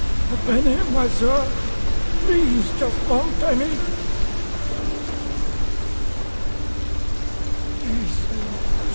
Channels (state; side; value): inverted; both; correlation -1.00